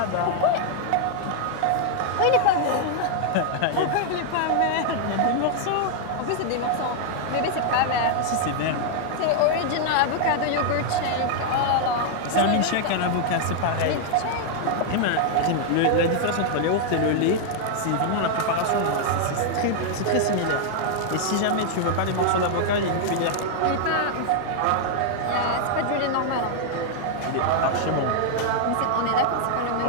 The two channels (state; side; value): different; both; correlation 0.00